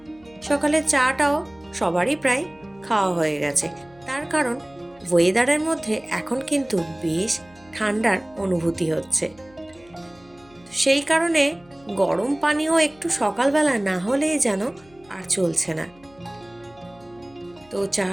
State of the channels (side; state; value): left; noise; hum, 28 dB below the sound